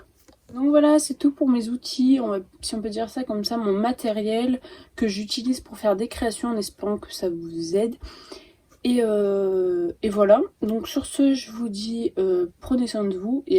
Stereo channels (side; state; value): both; identical; correlation 1.00